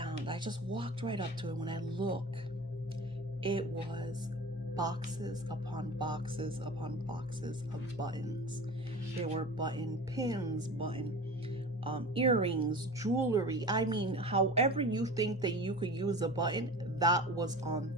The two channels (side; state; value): both; normal; correlation 0.35